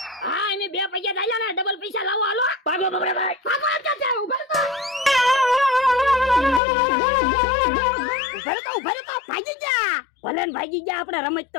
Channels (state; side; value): drops out; right; at 6.6 s